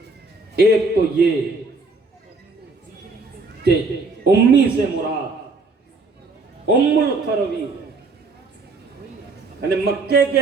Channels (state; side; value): quieter; left; 3.8 dB